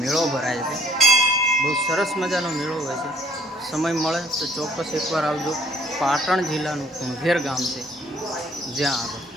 ભરાય છે. બહુ સરસ મજાનો મેળો હોય છે. સમય મળે તો ચોક્કસ એકવાર આવજો. પાટણ જિલ્લાનું કુણઘેર ગામ છે જ્યાં આગળ.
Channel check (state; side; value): normal; both; correlation 0.60